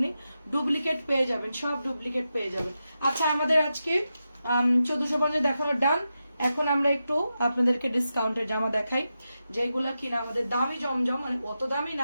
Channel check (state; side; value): inverted; both; correlation -0.89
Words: ডুপ্লিকেট পেয়ে যাবেন, সব ডুপ্লিকেট পেয়ে যাবেন। আচ্ছা, আমাদের আজকে 1450 দেখানোর ডান। এখন আমরা একটু আপনাদেরকে ডিসকাউন্টের জামা দেখাই, যেগুলা কিনা আমাদের দামি জমজম, মানে অত দামি